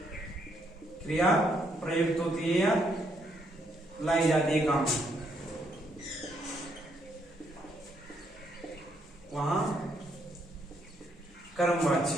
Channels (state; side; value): normal; both; correlation 0.74